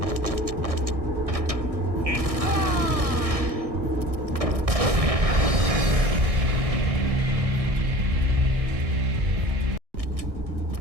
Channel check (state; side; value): late; left; 1.6 ms